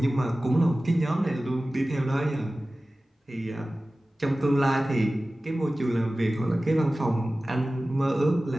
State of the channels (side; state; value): both; normal; correlation 0.96